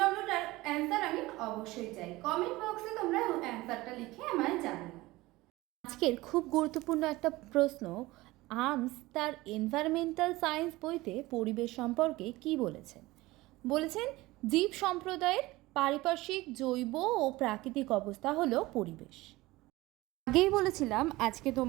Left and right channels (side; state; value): left; quieter; 19.6 dB